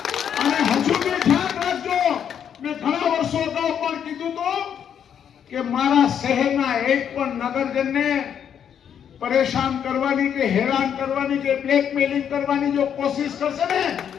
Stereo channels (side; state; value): right; quieter; 8.6 dB